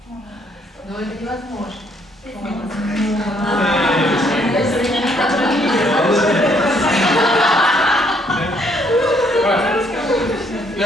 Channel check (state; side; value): normal; both; correlation 0.68